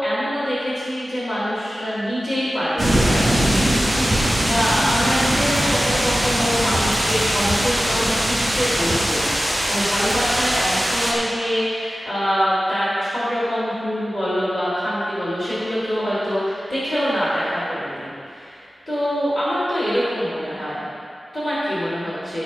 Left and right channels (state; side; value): normal; both; correlation 0.95